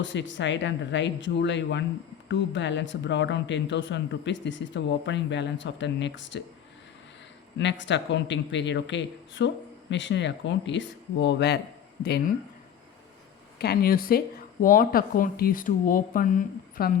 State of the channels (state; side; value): quieter; right; 9.1 dB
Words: side and write July 1 to balance brought down 10,000 rupees. This is the opening balance of the next accounting period. Okay, so machinery account is over. Then can you say what account is to open from